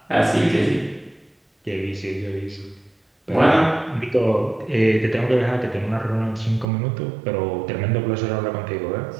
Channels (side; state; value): left; drops out; at 6.7 s